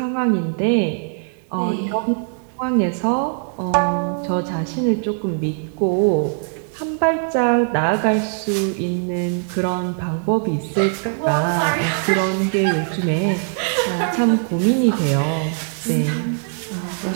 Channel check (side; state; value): left; silent; digital silence